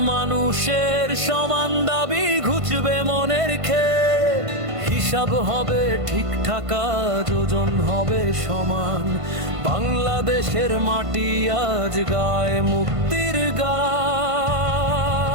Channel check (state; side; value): late; left; 1.5 ms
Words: মানুষের সমান দাবি, ঘুচবে মনের খেদ। হিসাব হবে ঠিকঠাক, যোজন হবে সমান, বাংলাদেশের মাটি আজ গায় মুক্তির গান।